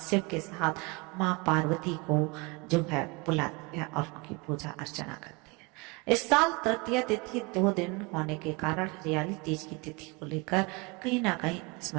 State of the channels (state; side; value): quieter; left; 27.0 dB